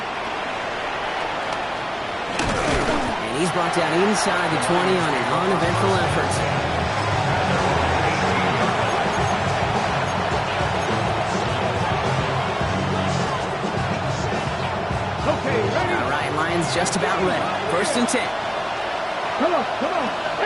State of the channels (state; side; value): identical; both; correlation 1.00